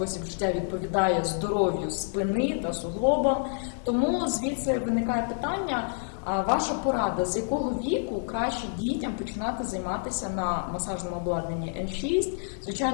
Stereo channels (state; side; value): silent; right; digital silence